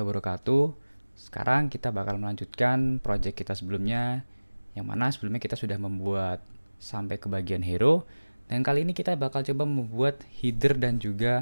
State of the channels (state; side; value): inverted; both; correlation -1.00